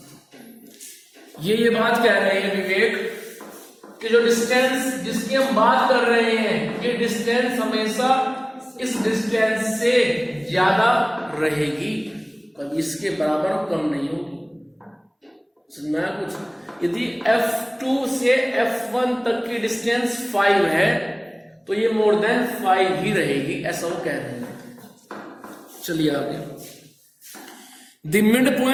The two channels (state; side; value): identical; both; correlation 1.00